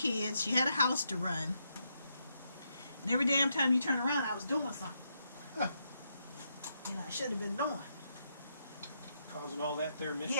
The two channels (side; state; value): both; inverted; correlation -0.80